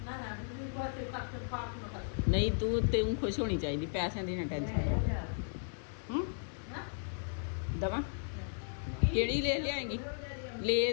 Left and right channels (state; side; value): silent; right; digital silence